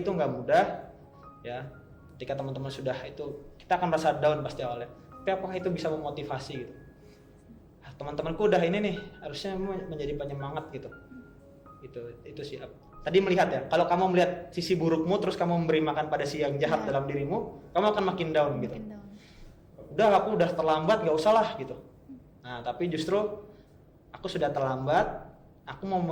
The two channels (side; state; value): both; identical; correlation 1.00